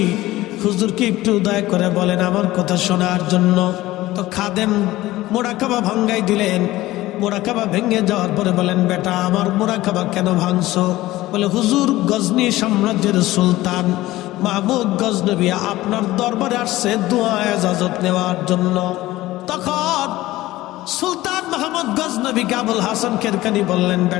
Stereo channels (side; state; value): right; quieter; 17.1 dB